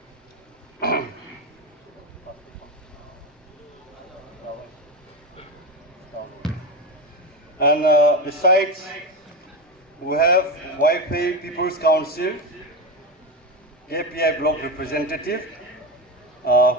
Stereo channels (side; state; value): both; normal; correlation 0.15